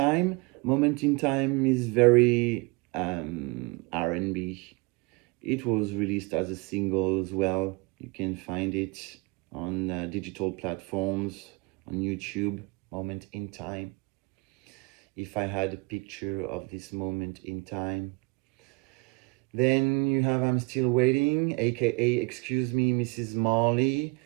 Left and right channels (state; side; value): quieter; left; 27.4 dB